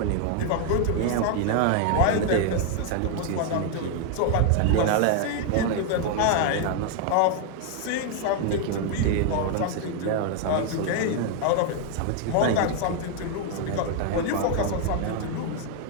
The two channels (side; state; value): both; different; correlation 0.00